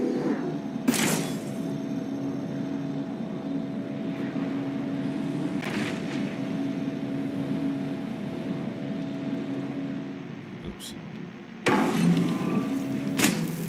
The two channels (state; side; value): identical; both; correlation 1.00